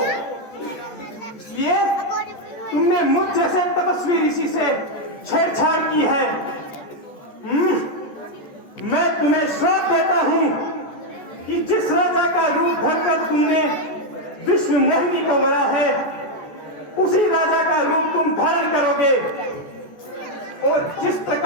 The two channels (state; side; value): late; right; 14 ms